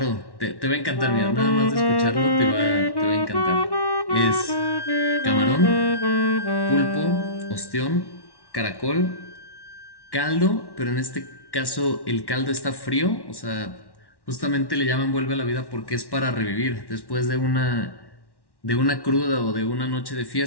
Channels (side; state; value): right; late; 1.1 ms